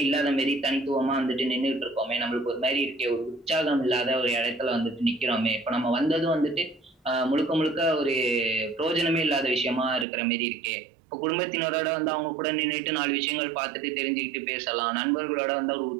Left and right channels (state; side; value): drops out; left; at 10.1 s